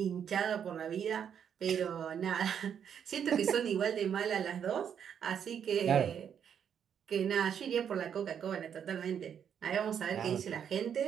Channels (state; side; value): quieter; left; 8.2 dB